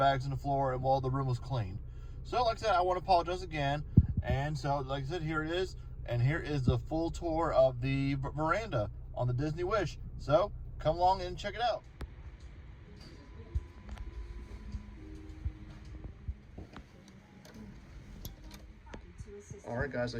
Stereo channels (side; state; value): both; identical; correlation 1.00